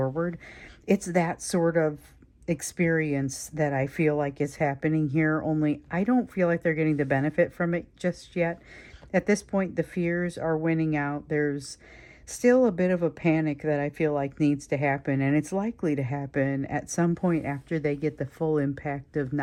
It's that sort of experience that I feel like is happening here, only I don't feel like they're getting the benefit from it just yet. At this point, the fears are winning out. There's still a bit of a panic that I feel like needs to happen, and it's likely to happen at some point after they get the full impact of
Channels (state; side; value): identical; both; correlation 1.00